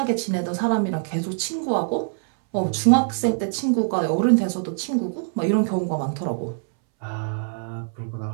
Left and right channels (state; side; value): silent; left; 63 dB below the other